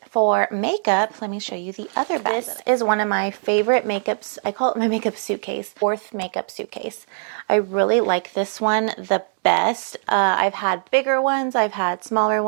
for makeup, let me show you the other bag. This is one of my favorite makeups. I call it my makeup suitcase, fourth makeup suitcase. I really like this one the best. I've had bigger ones, I've had smaller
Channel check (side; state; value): left; silent; digital silence